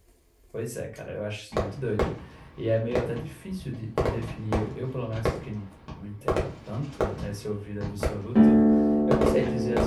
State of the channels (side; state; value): both; identical; correlation 1.00